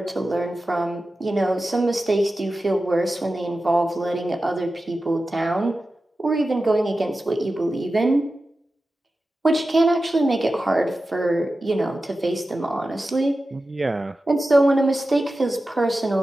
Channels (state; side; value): normal; both; correlation 0.93